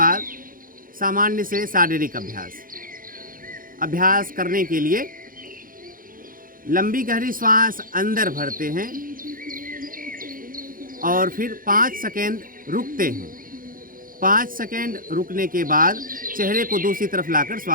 सामान्य से शारीरिक अभ्यास करने के लिए लंबी गहरी श्वास अंदर भरते हैं और फिर 5 सेकेंड रुकते हैं। 5 सेकेंड रुकने के बाद चेहरे को दूसरी तरफ लाकर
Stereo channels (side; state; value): left; late; 0.40 ms